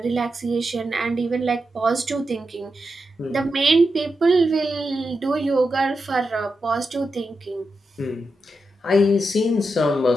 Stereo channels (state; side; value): normal; both; correlation 0.87